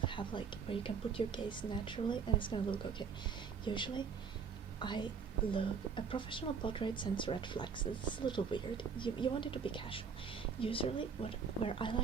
have, like, where you can put your gaze naturally, and it's gonna look okay. Usually a professional portrait sends red flags. It's a little weird. You want it to be casual. Usually where I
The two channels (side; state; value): left; quieter; 6.0 dB